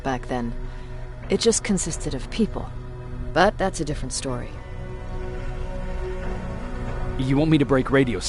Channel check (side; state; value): both; identical; correlation 1.00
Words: back then. It just consisted of people. But that's a different story. You want me to break radio